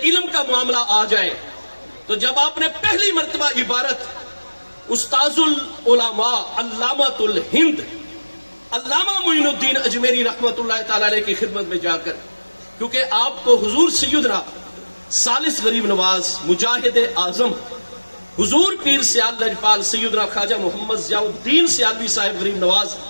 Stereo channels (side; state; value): both; inverted; correlation -1.00